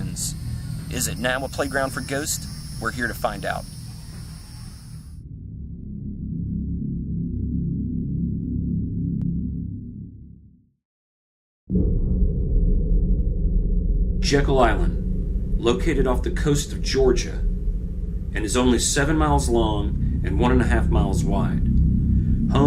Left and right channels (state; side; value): identical; both; correlation 1.00